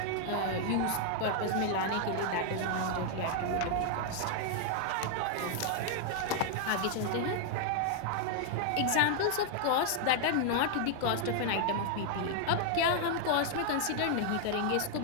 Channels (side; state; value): both; different; correlation 0.00